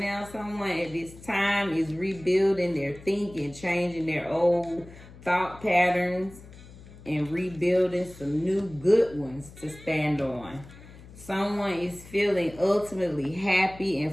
now someone at this time is rebuilding their thinking, changing their old thought patterns, and rebuilding some new good ones to stand on. Someone is feeling ultimately happy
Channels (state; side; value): noise; left; hum, 19 dB below the sound